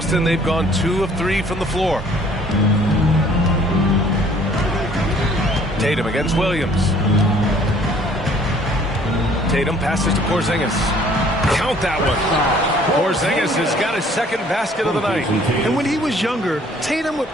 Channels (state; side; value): normal; both; correlation 0.57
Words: they've gone 2 of 3 from the floor. Tatum against Williams. Tatum passes to Porzingis. Count that one. Porzingis has got his second basket of the night. And when he was younger, Tatum would